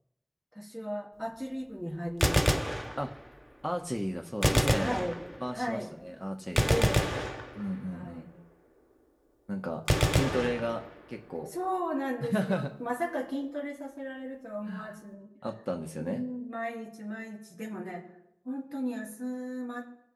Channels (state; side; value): identical; both; correlation 1.00